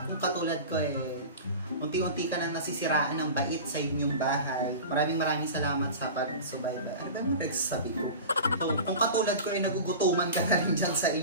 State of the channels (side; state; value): both; inverted; correlation -0.33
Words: kung katulad ko unti-unti ka nang nasisiraan ng bait sa inyong bahay. Maraming salamat sa pagsubaybay. Ano ba yung nagsasabi ko? So, kung katulad ko nagugutuman ka na rin dyan sa